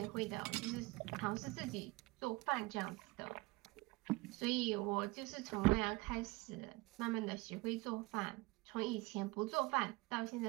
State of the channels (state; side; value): quieter; left; 23.4 dB